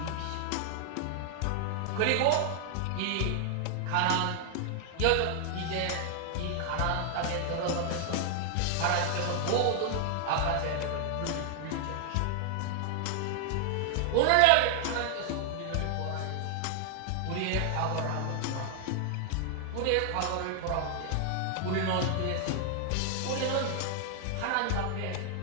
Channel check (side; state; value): both; different; correlation 0.00